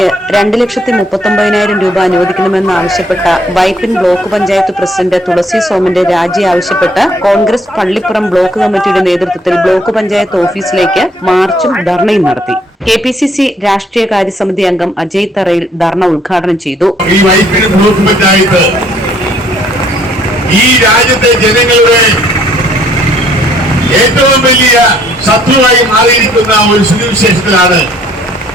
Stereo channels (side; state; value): both; normal; correlation 0.64